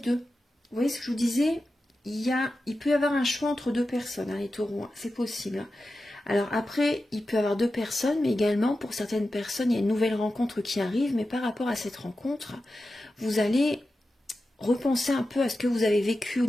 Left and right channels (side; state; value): both; normal; correlation 0.92